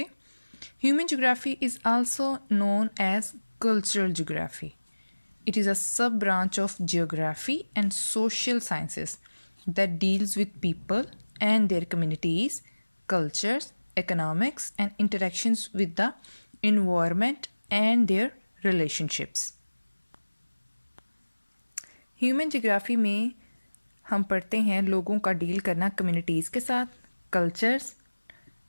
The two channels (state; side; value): inverted; both; correlation -1.00